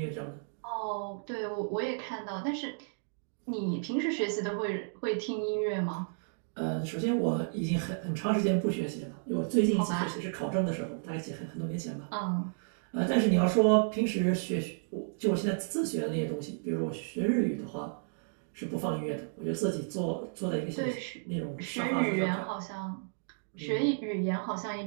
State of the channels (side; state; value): left; silent; digital silence